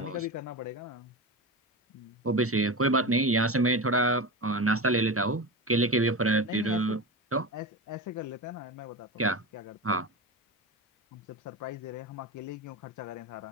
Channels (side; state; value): both; normal; correlation 0.24